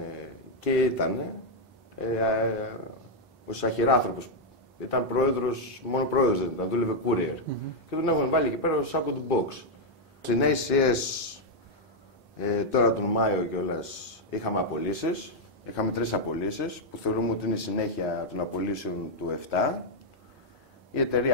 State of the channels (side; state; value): both; normal; correlation -0.01